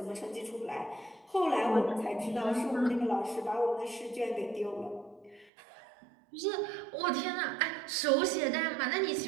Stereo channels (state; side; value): drops out; left; at 5.5 s